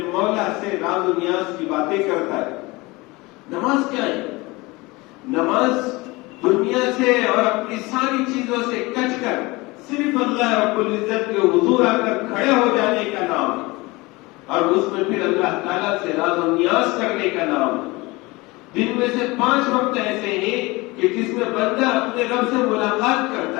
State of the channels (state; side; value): quieter; right; 23.1 dB